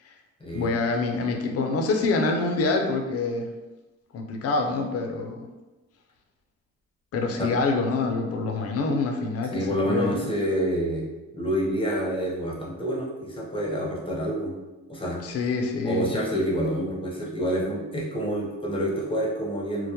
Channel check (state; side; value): normal; both; correlation 0.29